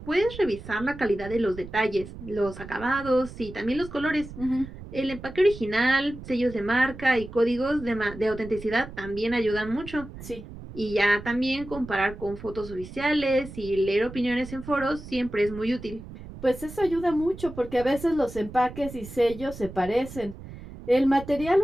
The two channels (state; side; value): noise; right; rumble, 14 dB below the sound